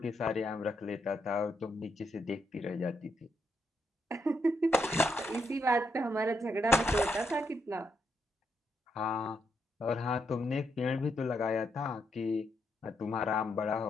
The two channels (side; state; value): both; normal; correlation 0.79